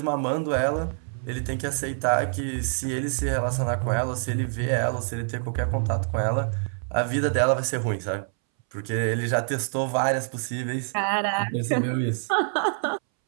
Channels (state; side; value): silent; left; 61 dB below the other